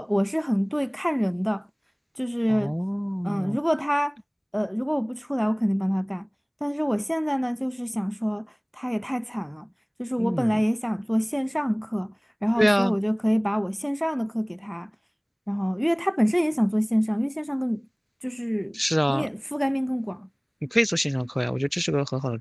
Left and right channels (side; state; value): both; identical; correlation 1.00